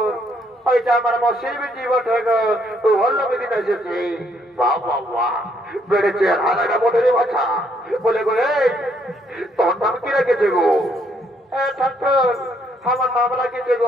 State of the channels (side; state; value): both; normal; correlation 0.70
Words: ওইটা আমার মশির বিটি বটে গো, তো হল্লো বেদিন এসেছে। বাবা বেড়েছে হারাটা বটে রে বাচ্চা। বলে গো এই, তোর নাম কি রেখেছে গো? ঠাকুর, আমার নাম রেখেছে